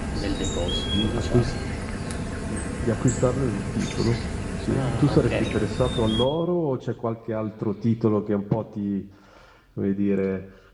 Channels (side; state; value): both; identical; correlation 1.00